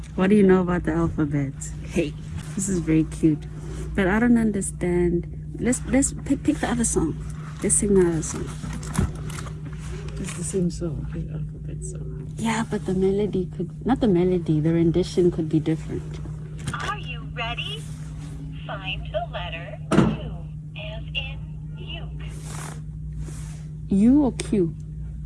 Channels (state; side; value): identical; both; correlation 1.00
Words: What do you know about the alphabet? Hey, this is very cute, but I don't understand. Let's pick the other song. Let's sing the other song. It's the same song, the alphabet song. Yeah, but the melody could not the melody. The rendition could be different. Are you ready? Find the letter U, as in uke. U or Q?